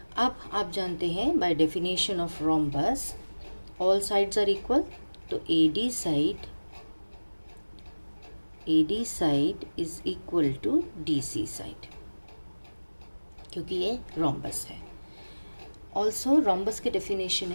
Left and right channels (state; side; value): inverted; both; correlation -1.00